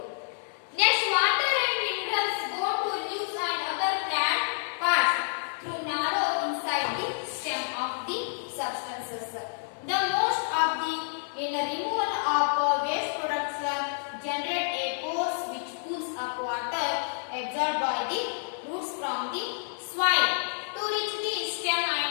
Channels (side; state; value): right; silent; 59 dB below the other